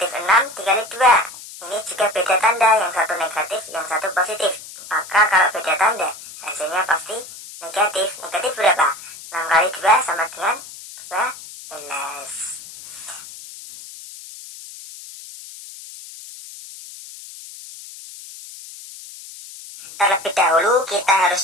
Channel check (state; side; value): noise; left; hiss, 15 dB below the sound